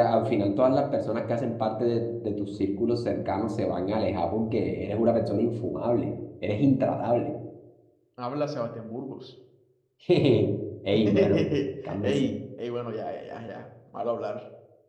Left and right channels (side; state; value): both; identical; correlation 1.00